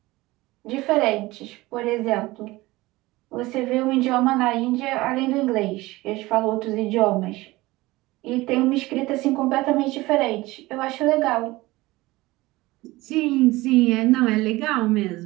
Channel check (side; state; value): left; quieter; 19.8 dB